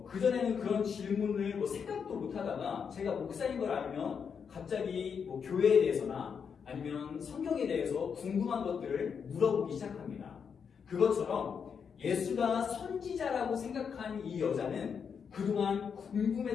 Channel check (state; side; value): quieter; right; 6.6 dB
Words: 그전에는 그런 질문을 생각도 못하다가 제가 목사인 걸 알면 갑자기 교회에 대해서나 아니면 성경에 대해서 궁금한 것들을 물어보기 시작합니다. 그것처럼 예수가 선지자라고 생각한 이 여자는 그동안